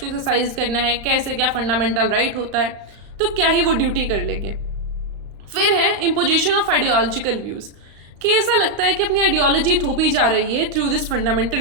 एक्सरसाइज करना है, कैसे क्या फंडामेंटल राइट होता है, तो क्या ही वो ड्यूटी कर लेंगे। फिर है इम्पोजिशन ऑफ आइडियोलॉजिकल व्यूज़, कि ऐसा लगता है कि अपनी आइडियोलॉजी थोपी जा रही है थ्रू दिस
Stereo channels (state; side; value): late; left; 35 ms